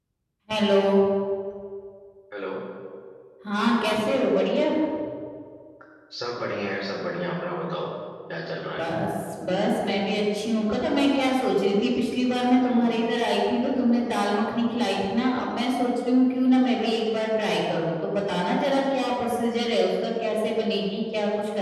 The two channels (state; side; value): identical; both; correlation 1.00